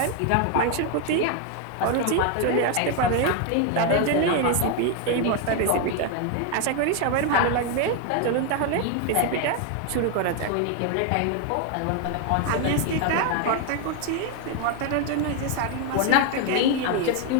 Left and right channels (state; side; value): different; both; correlation 0.01